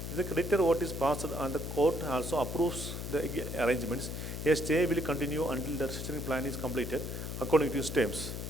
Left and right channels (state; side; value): noise; left; hum, 6 dB below the sound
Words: If the creditor vote is passed and the court also approves the arrangements, a stay will continue until the restructuring plan is completed according to its terms,